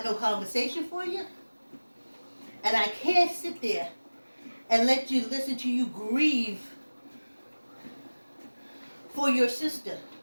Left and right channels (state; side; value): inverted; both; correlation -1.00